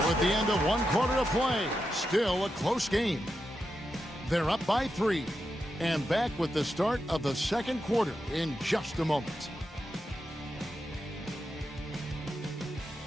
the end of one quarter of play, still a close game. They're up by 3 and back with the start of the second quarter in just a moment.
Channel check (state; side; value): normal; both; correlation 0.87